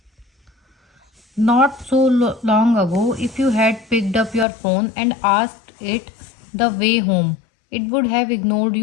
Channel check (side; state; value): right; drops out; at 4.5 s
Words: Not so long ago, if you had picked up your phone and asked it the way home, it would have ignored